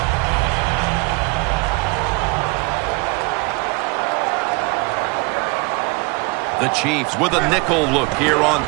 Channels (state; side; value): quieter; left; 27.9 dB